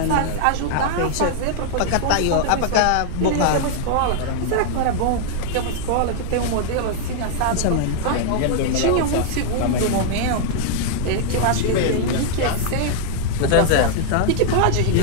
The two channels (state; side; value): different; both; correlation -0.01